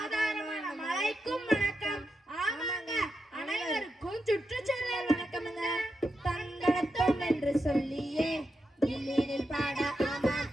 மழைக்கும் வணக்கம். ஆமாங்க, அனைவருக்கும் சுற்றுச்சூழல் வணக்கமுங்க. தந்தனத்தோம் என்று சொல்லியே இல்லினில் பாட ஆமா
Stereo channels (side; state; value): both; normal; correlation 0.86